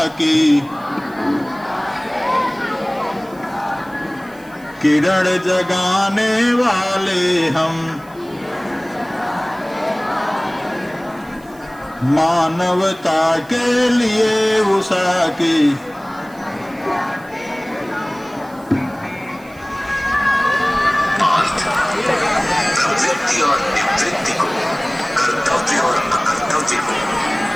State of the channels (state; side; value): noise; right; hiss, 26 dB below the sound